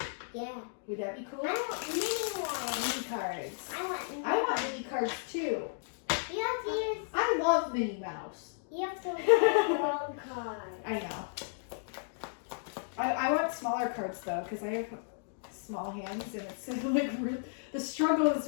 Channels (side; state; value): right; silent; digital silence